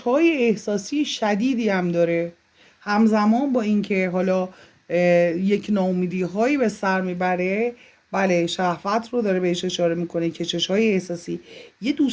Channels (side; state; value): both; identical; correlation 1.00